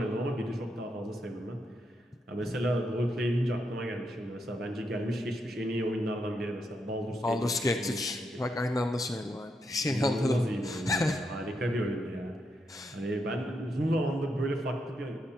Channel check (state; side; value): normal; both; correlation 0.81